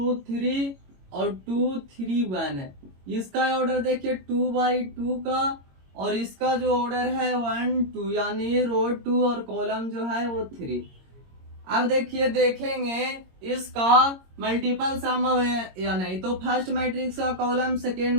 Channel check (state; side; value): late; left; 22 ms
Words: 3 और 2 3 1 है। इसका ऑर्डर देखिए 2/2 का, और इसका जो ऑर्डर है 1 2, यानी रो 2 और कॉलम जो है वो 3। अब देखिए देखेंगे इसका मल्टीपल सम है या नहीं। तो फर्स्ट मैट्रिक्स का कॉलम सेकेंड